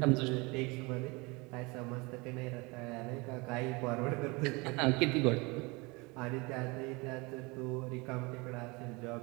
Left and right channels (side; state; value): left; quieter; 26.4 dB